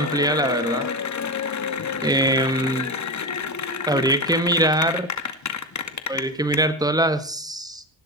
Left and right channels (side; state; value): both; normal; correlation 0.18